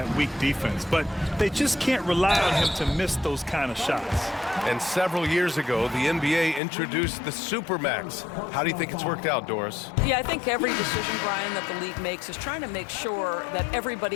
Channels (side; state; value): right; drops out; at 6.6 s